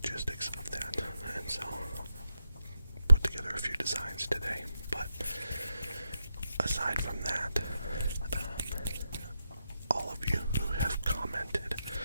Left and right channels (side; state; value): both; inverted; correlation -0.84